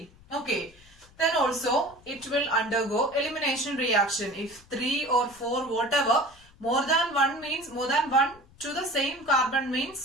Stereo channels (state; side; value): noise; left; rumble, 26 dB below the sound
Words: Okay. Then also it will undergo elimination reaction. If 3 or 4, whatever, more than 1 means more than 1 to the same carbon